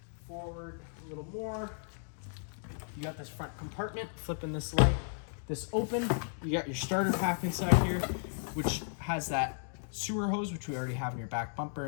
Forward a little more. You got this front compartment, flipping this open. You got your starter pack inside here, which has that sewer hose, which we already have in your back bumper.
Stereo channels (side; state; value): right; silent; digital silence